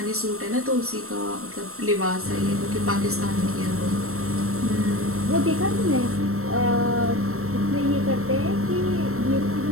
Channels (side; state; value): left; late; 0.63 ms